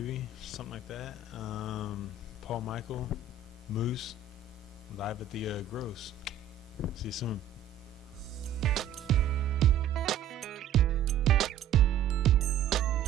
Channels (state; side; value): quieter; left; 7.2 dB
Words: something like that. Paul Michael, Moose, live at the Gross. See you soon.